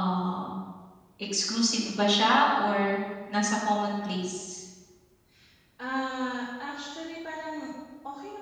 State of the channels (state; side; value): identical; both; correlation 1.00